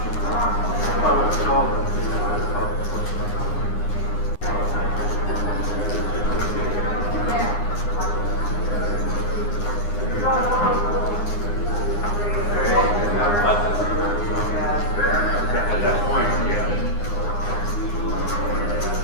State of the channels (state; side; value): late; right; 9.7 ms